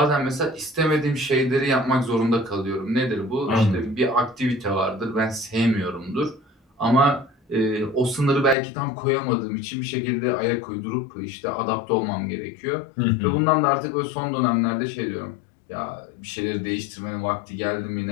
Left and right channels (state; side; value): drops out; right; at 8.6 s